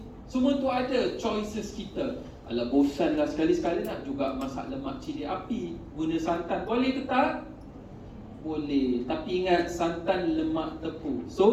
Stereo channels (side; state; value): both; identical; correlation 1.00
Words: semua tu ada choices kita. Alah, bosan lah, sekali-sekali nak juga masak lemak cili api, guna santan, boleh ke tak? Boleh, tapi ingat santan lemak tepung,